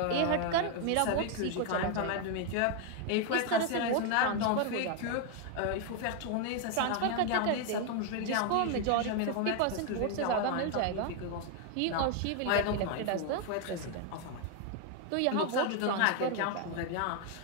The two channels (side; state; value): both; different; correlation 0.01